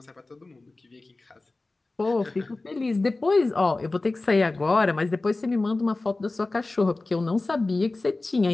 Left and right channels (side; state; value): right; quieter; 3.2 dB